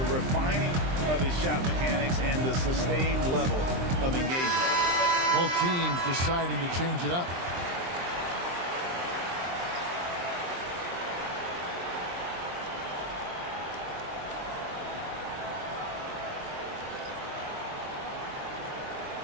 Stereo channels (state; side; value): late; left; 23 ms